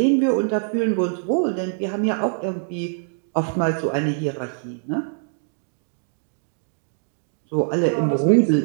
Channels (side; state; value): left; silent; 63 dB below the other